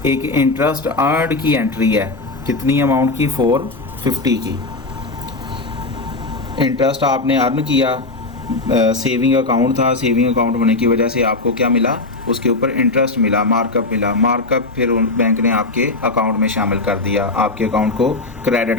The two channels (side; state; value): right; quieter; 3.3 dB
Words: एक इंटरेस्ट अर्नड की एंट्री है, कितनी अमाउंट की, 450 की। इंटरेस्ट आपने अर्न किया, सेविंग अकाउंट था, सेविंग अकाउंट होने की वजह से आपको क्या मिला, उसके ऊपर इंटरेस्ट मिला, मार्कअप मिला। मार्कअप फिर बैंक ने आपके अकाउंट में शामिल कर दिया, आपके अकाउंट को